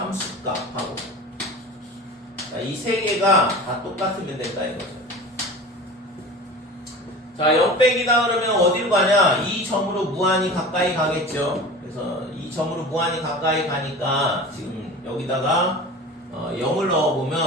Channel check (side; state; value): both; normal; correlation 0.36